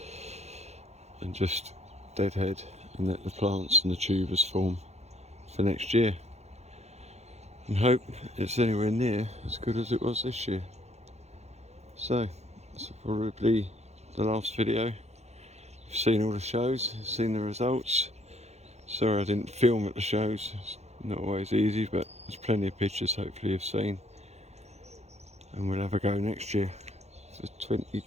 and just deadhead and let the plants and the tubers form for next year, and hope it's anywhere near as good as it was this year. So that's probably the last video. You've seen all the shows, you've seen the results. Sorry I didn't film at the shows, it's not always easy, but there's plenty of pictures hopefully you've seen, and we'll have a go next year for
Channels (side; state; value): left; late; 0.32 ms